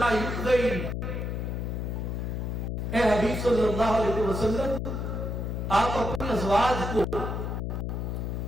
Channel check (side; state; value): left; noise; hum, 2 dB below the sound